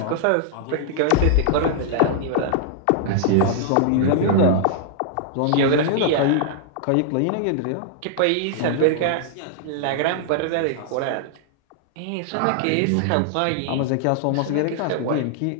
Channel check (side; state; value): both; different; correlation -0.01